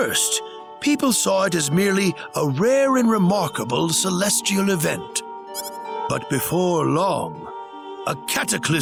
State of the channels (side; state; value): both; identical; correlation 1.00